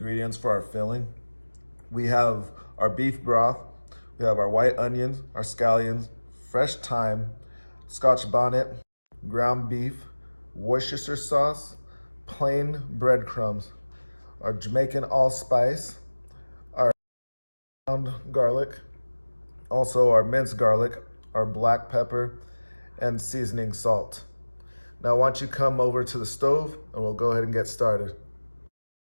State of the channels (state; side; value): inverted; both; correlation -1.00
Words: for our filling. We have our beef broth, we have our white onions, our scallions, fresh thyme, scotch bonnet, ground beef, Worcestershire sauce, plain breadcrumbs, our Jamaican allspice, our ground garlic, also our minced garlic, our black pepper, and seasoning salt. Now, why don't you come over to the stove and we'll go ahead and get started.